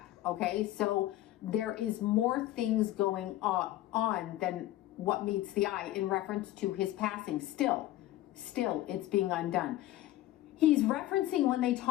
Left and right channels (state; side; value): quieter; right; 15.0 dB